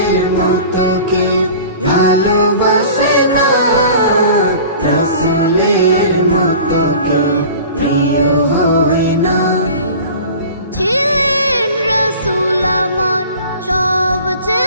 মতো কেউ ভালোবাসে না, রসুলের মতো কেউ প্রিয় হয় না। ছিলেন রসুল আমার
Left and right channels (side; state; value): both; inverted; correlation -0.41